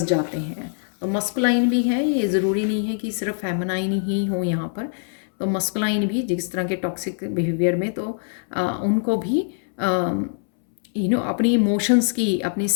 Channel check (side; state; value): right; silent; 63 dB below the other